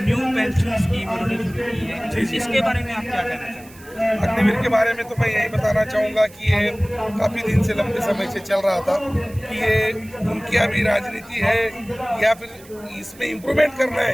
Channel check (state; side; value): noise; right; hiss, 23 dB below the sound